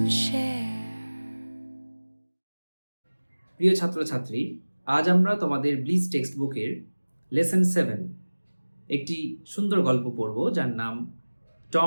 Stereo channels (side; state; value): both; inverted; correlation -1.00